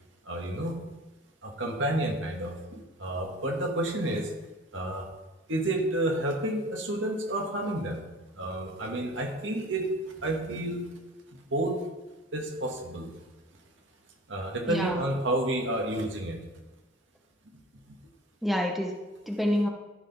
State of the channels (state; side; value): normal; both; correlation 0.43